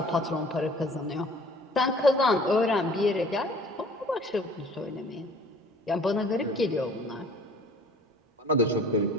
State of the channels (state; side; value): normal; both; correlation 0.51